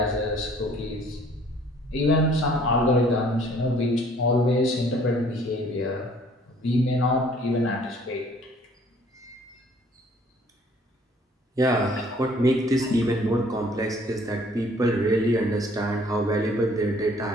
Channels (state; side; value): normal; both; correlation 0.57